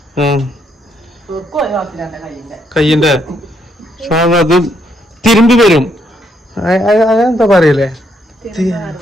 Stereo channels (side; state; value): both; normal; correlation 0.74